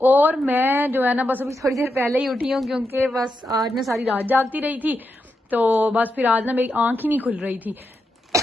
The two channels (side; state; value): both; normal; correlation 0.85